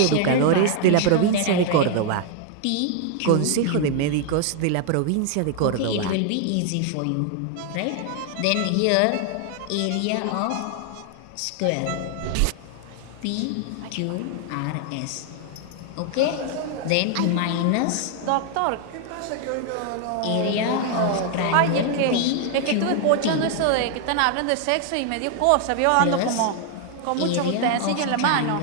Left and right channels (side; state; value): both; different; correlation 0.00